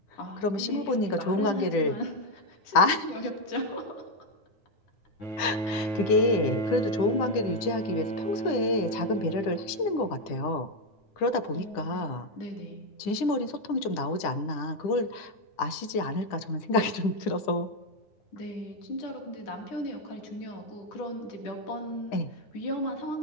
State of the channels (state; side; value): late; right; 10 ms